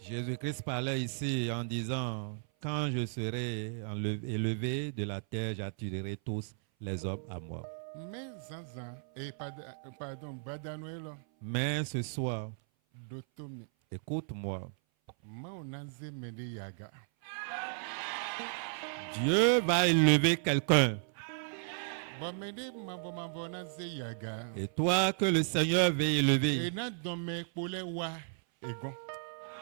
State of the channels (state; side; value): silent; left; 55 dB below the other